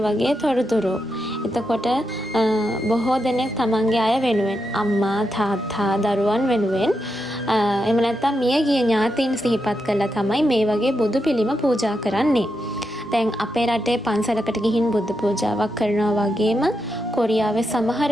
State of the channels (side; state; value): both; normal; correlation 0.85